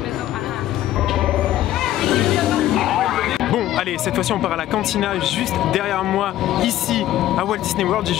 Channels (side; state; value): right; quieter; 13.6 dB